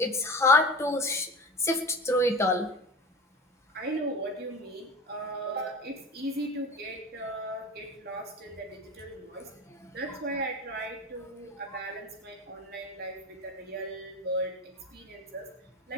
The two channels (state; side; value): normal; both; correlation 0.33